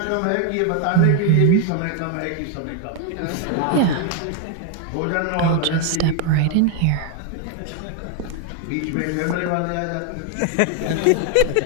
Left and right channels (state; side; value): different; both; correlation 0.01